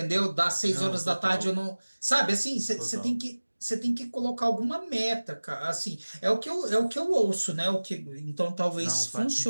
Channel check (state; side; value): inverted; both; correlation -1.00